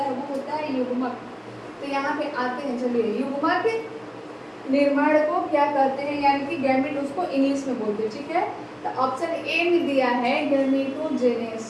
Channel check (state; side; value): identical; both; correlation 1.00